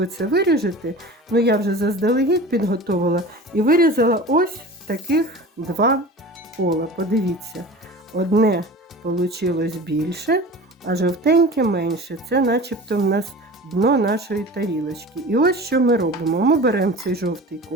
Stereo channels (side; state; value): both; normal; correlation 0.36